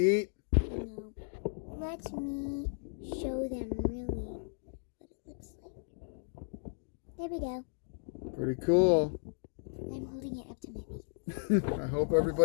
No. Let me show them really what it looks like. There we go. Pretty cool. I'm holding it up to my face. I hope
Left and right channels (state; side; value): silent; right; digital silence